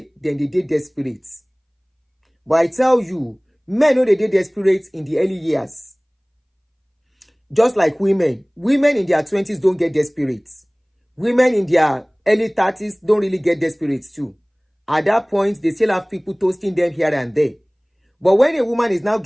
then they did desperate. But I tell you, men know they did desperate in the early years. Just like women. Women in their 20s don't get desperate. Women in their early 30s don't really get desperate too. At that point, they still have people toasting them here and there. But when a woman is now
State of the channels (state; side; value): identical; both; correlation 1.00